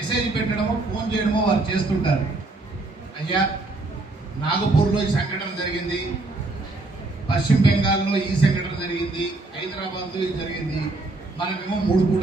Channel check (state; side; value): quieter; left; 3.1 dB